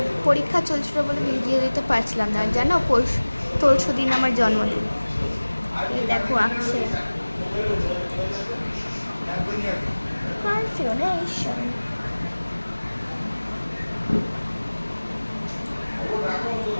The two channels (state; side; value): inverted; both; correlation -1.00